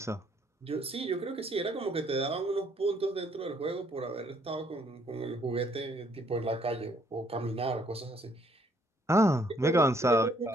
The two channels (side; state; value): both; normal; correlation 0.66